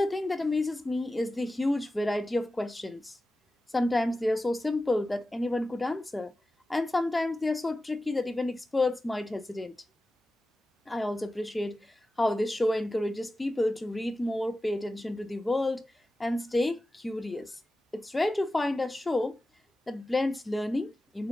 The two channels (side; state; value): both; normal; correlation 0.94